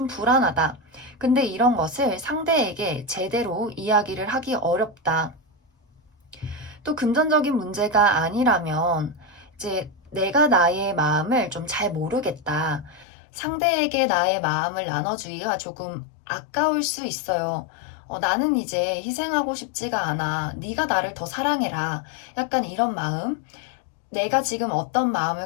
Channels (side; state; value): right; drops out; at 13.1 s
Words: 불안하다. 근데 이런 것을 상대에게 제대로 이야기를 하기 어렵다. 또 금전적인 문제가 아니라면 이제 내가 나의 마음을 좀 잘 모르겠다. 상대에게 나의 마음을 나눠주기가 조금 아까울 수 있어요. 나는 이제 희생하고 싶지가 않아. 네가 나를 더 사랑해라. 약간 이런 마음. 내가 지금 어떤 마음을